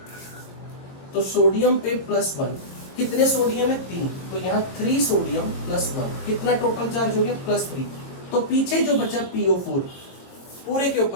तो सोडियम पे +1, कितने सोडियम है, 3, तो यहाँ 3 सोडियम +1, कितना टोटल चार्ज हो गया, +3। तो पीछे जो बचा PO4 पूरे के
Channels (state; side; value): late; right; 22 ms